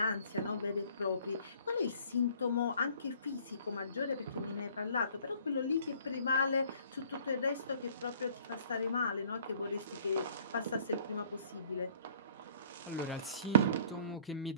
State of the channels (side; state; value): both; inverted; correlation -0.57